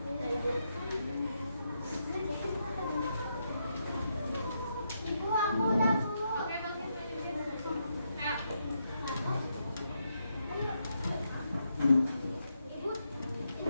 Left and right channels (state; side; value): inverted; both; correlation -0.81